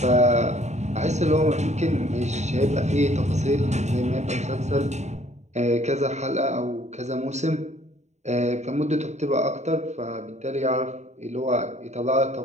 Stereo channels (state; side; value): late; left; 0.33 ms